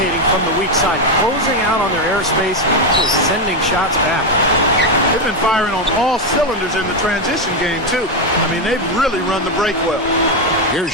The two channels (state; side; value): normal; both; correlation 0.07